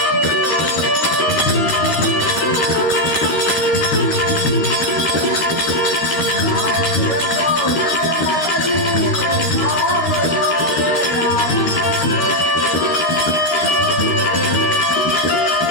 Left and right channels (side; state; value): right; late; 13 ms